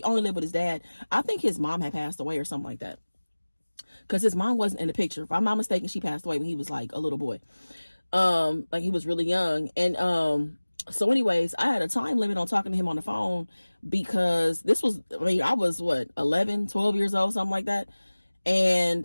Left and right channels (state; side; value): inverted; both; correlation -1.00